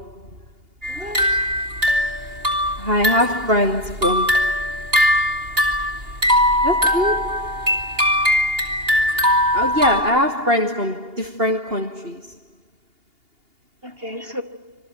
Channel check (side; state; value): left; late; 2.8 ms